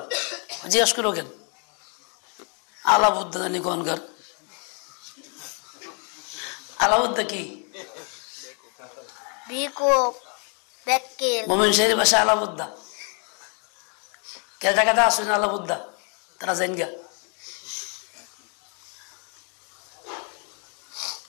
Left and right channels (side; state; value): right; quieter; 38.6 dB